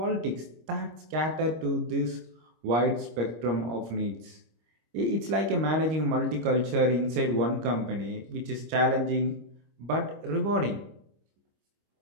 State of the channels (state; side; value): late; left; 25 ms